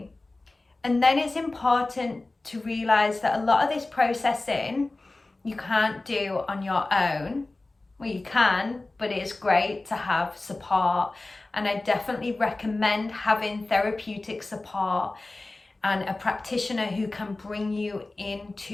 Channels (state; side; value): quieter; right; 3.1 dB